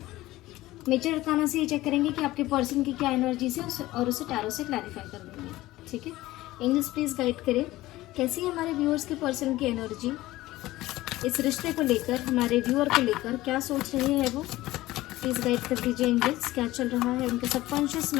मेजर अरकाना से ये चेक करेंगे कि आपके पर्सन की क्या एनर्जीज है और उसे टैरो से क्लैरिफाई कर देंगे। ठीक है, एंजल्स प्लीज गाइड करें कैसी है हमारे व्यूअर्स के पर्सन की एनर्जी इस रिश्ते को लेकर, हमारे व्यूअर को लेकर क्या सोच रहे हैं वो। प्लीज गाइड कर दीजिए एंजल्स, क्या चल रहा है उनके सबकॉन्शियस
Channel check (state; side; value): quieter; right; 17.3 dB